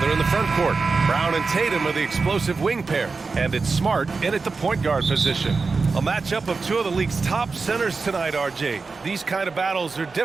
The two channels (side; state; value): left; quieter; 4.4 dB